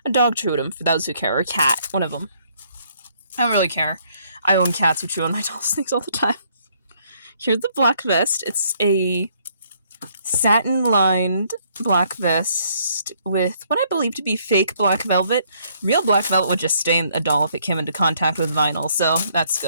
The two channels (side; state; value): both; inverted; correlation -0.67